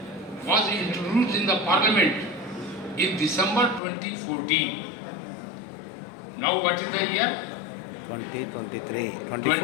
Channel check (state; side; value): drops out; right; at 3.8 s